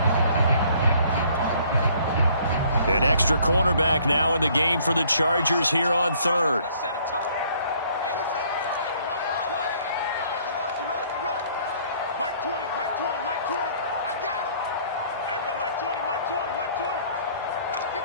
An extra cornerback now in the game for the Chargers here on third.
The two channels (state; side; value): inverted; both; correlation -0.60